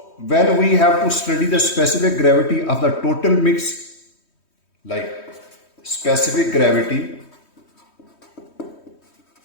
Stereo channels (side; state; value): right; late; 3.1 ms